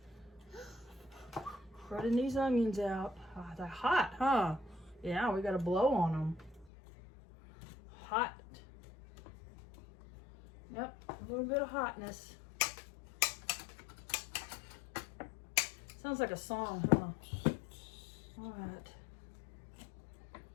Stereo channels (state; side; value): drops out; right; at 6.7 s